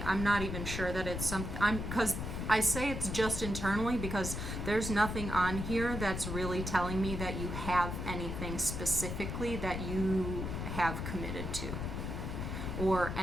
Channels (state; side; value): noise; left; rumble, 4 dB below the sound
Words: I'm not even sure that it's something. Because I say it's just internally because there's nothing on here that's really telling me that you have anything specifically that you have committed to, or